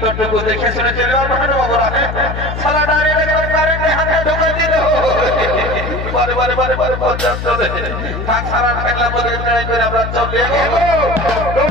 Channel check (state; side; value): noise; left; hum, 6 dB below the sound